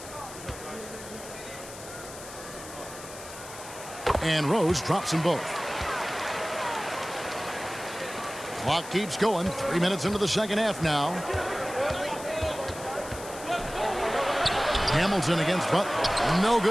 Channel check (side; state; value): left; noise; hiss, 14 dB below the sound